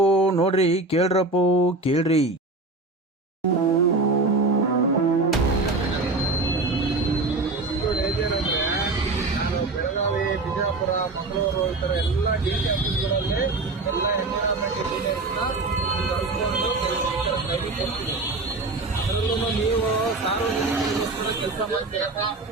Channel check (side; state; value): left; quieter; 3.3 dB